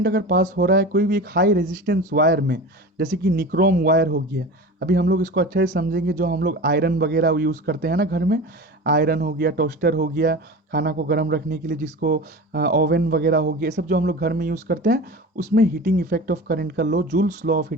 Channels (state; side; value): normal; both; correlation 0.32